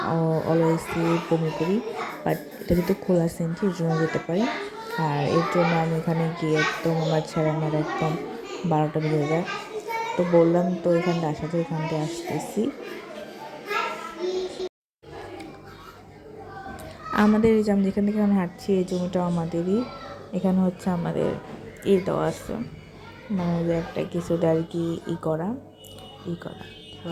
অলওয়েজই বমি করি, বাট এটা যেহেতু খোলা সেনজি এর জন্য যেতে পারি। আর এর জন্য আমি এখানে গিয়ে একদম আমার ছেড়ে আমার একদম 12টা বেজে যায়। তো বললাম তো এখানটা আসা যায়, এখান থেকে আসতেছি। আমাদের এই যে আমি যেখান থেকে আমি হাঁটছি এই জমিটাও আমাদেরই। এখানে হচ্ছে আমাদের দেওয়া আছে, মানে যে একটা কিছুটা আর কি করা কী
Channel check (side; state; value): both; identical; correlation 1.00